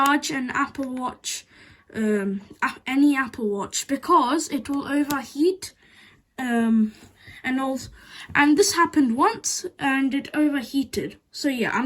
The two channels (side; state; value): both; identical; correlation 1.00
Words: an Apple Watch, any Apple Watch, because it will overheat. And this happened once and it overheated. So yeah,